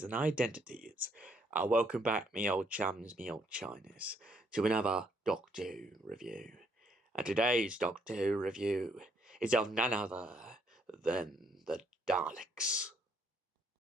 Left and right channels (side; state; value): both; normal; correlation 0.70